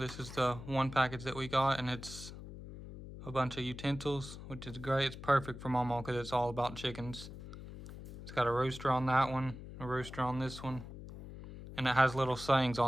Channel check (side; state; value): left; noise; hum, 12 dB below the sound